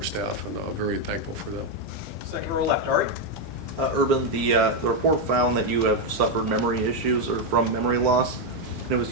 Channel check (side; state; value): both; normal; correlation 0.03